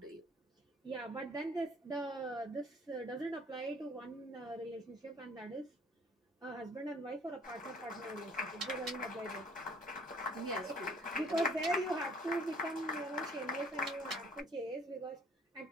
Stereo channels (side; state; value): both; normal; correlation 0.57